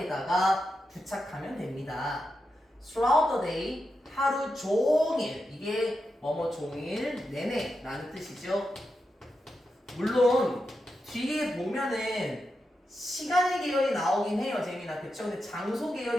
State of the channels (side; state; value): both; normal; correlation 0.88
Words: 부착하면 됩니다. throughout the day, 하루 종일. 이게 뭐뭐 종일 내내 라는 뜻이죠. 물론 뒤에 보면은 시간의 계열이 나오긴 해요, 재민아. 그쵸? 근데 장소